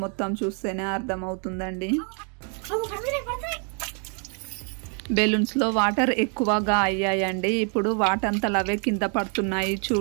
మొత్తం చూస్తేనే అర్థమవుతుందండి. బెలూన్స్ లో వాటర్ ఎక్కువగా అయ్యాయండి. ఇప్పుడు వాటంతలు అవే కింద పడుతున్నాయి.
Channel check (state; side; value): quieter; left; 40.0 dB